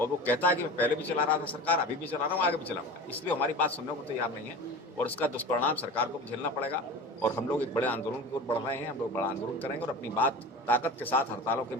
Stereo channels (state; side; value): normal; both; correlation 0.33